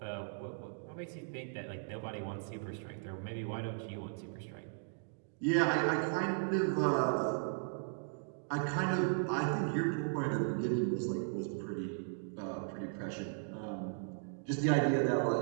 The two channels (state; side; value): silent; left; digital silence